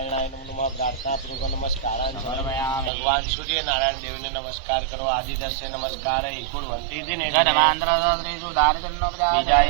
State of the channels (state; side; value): drops out; left; at 2.9 s